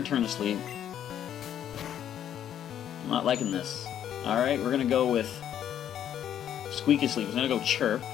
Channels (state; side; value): quieter; right; 10.2 dB